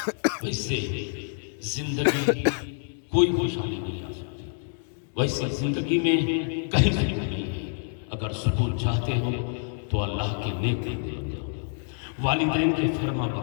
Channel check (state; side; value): silent; right; digital silence